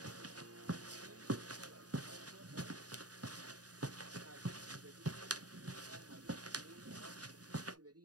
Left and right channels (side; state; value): left; late; 0.68 ms